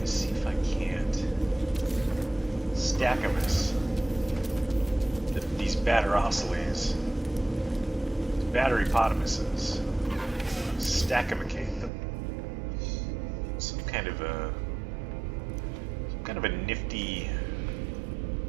is see if I can't stack them as these batterosilies, batterypotamuses, stackimicate them. Some kind of a nifty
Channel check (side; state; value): left; drops out; at 11.9 s